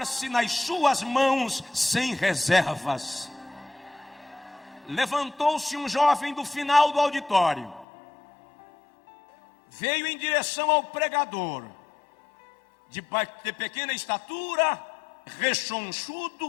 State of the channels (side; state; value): right; drops out; at 7.9 s